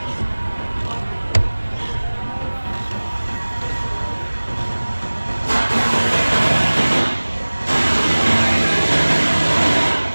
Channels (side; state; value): both; inverted; correlation -1.00